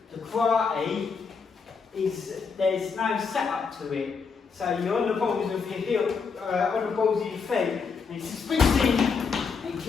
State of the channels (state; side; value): quieter; right; 5.4 dB